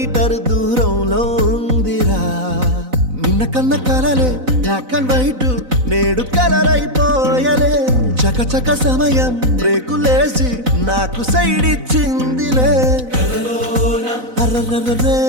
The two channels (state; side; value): late; left; 4.0 ms